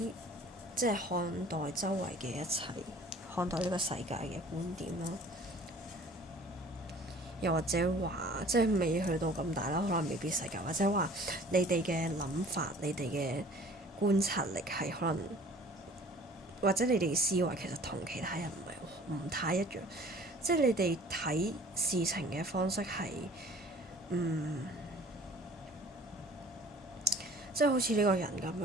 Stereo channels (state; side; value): normal; both; correlation 0.49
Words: 即係看待周圍嘅一切，看待呢個世界嘅觀點啦。又或者話，即係未去到咁大啦，可能未必世界，或者話你哋嘅諗法，你哋嘅觀察力係可能，或者你哋嘅思維其實同其他人唔太一樣，即係你哋睇事情嘅方式係，即係好似呢個人咁